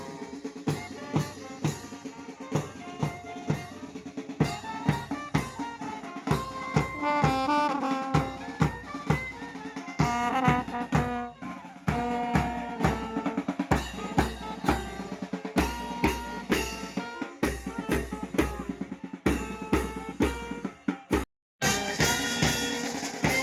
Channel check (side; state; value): both; identical; correlation 1.00